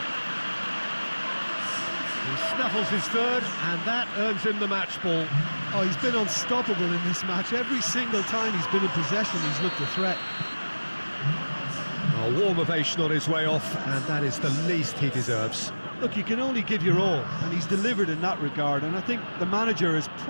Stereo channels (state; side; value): inverted; both; correlation -1.00